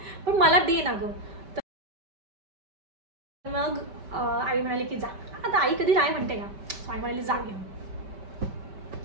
पण मला दे ना गं. मग आई म्हणाली की जा. आता आई कधी नाही म्हणते का, आई म्हणाली जा घेऊन.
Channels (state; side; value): late; left; 5.1 ms